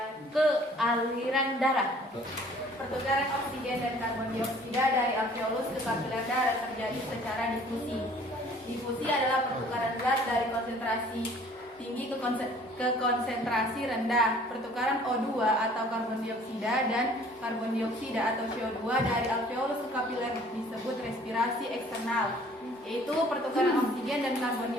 ke aliran darah. Pertukaran oksigen dan karbon dioksida dari alveolus ke kapiler darah terjadi secara difusi. Difusi adalah pertukaran zat dari konsentrasi tinggi ke konsentrasi rendah. Pertukaran O2 atau karbon dioksida dan karbon dioksida atau CO2 dari alveolus ke kapiler disebut respirasi eksternal, yaitu pertukaran oksigen dan karbon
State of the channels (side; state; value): both; normal; correlation 0.54